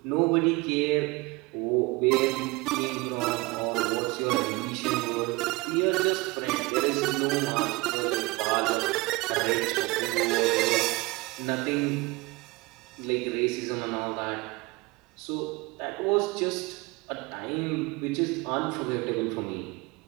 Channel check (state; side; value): quieter; left; 23.6 dB